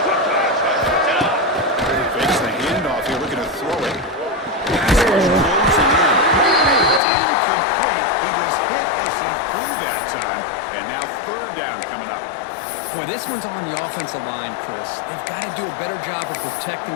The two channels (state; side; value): drops out; right; at 7.0 s